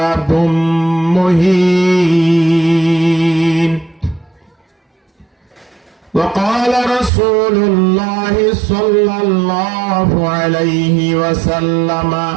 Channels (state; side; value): drops out; left; at 7.1 s